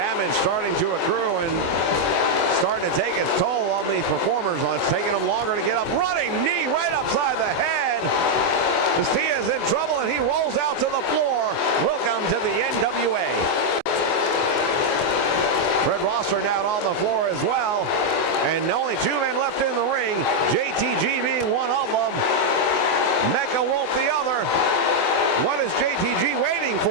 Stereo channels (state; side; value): late; right; 24 ms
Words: starting to accrue and starting to take its toll on these performers. It's taking them longer to get up. Running knee right upside the head. Castilla's in trouble and he rolls out to the floor. Welcome to the NWA. Fred Rosser now on the floor as well. And only two men left in the ring. JTG being one of them. Mecha Wolf the other. What is JTG waiting